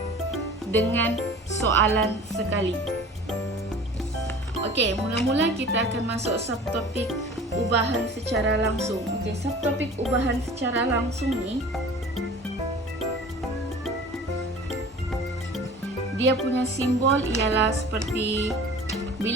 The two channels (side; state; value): both; normal; correlation 0.42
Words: dengan soalan sekali. Okey, mula-mula kita akan masuk subtopik ubahan secara langsung. Okey, subtopik ubahan secara langsung ni dia punya simbol ialah seperti